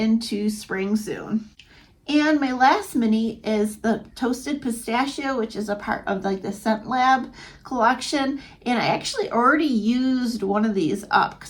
spring soon. And my last mini is the Toasted Pistachio, which is a part of like the Scent Lab collection. And I actually already used one of these up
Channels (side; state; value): both; identical; correlation 1.00